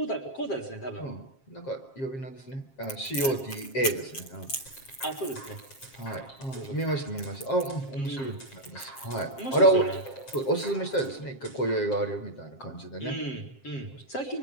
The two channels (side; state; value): right; late; 7.5 ms